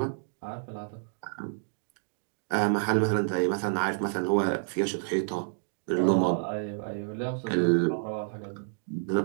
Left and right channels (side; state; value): left; silent; digital silence